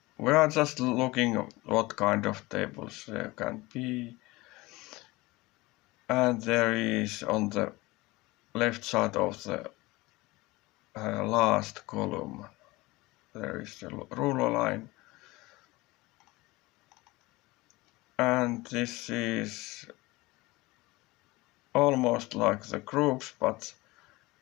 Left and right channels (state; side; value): quieter; right; 21.3 dB